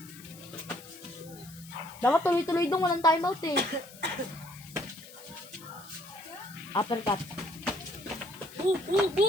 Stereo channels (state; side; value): noise; left; hiss, 19 dB below the sound